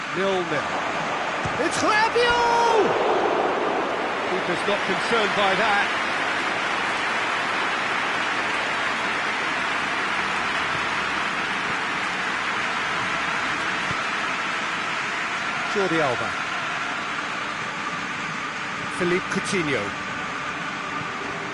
0-0. It's Rabiot! Keeper's not concerned by that. Jordi Alba. Philippe Coutinho.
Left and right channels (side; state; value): both; identical; correlation 1.00